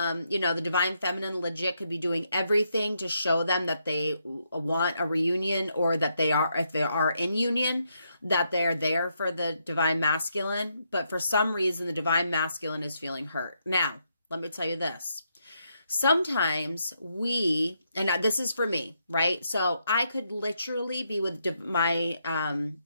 know, the Divine Feminine legit could be doing everything to show them that they want a reunion, or that they are, if they are in union, that they're there for the Divine Masculine. But for some reason, the Divine Masculine is feeling hurt. Now, let me tell you this. Sometimes and this is for me, right? So I could literally be with my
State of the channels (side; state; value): both; inverted; correlation -0.79